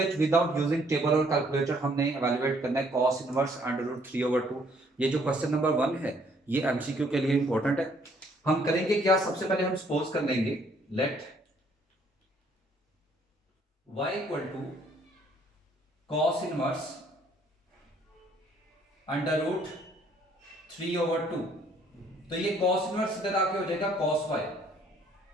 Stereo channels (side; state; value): both; normal; correlation 0.64